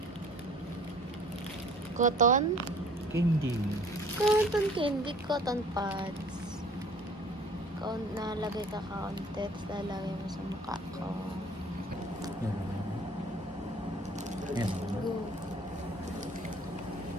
Cotton? candy. Cotton candy, cotton pads. Nalagay ka kaunti, tapos lalagay mo sa mukha ko. Yan. Go.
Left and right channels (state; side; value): normal; both; correlation 0.51